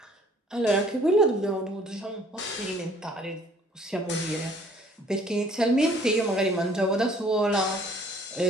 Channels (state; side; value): normal; both; correlation 0.57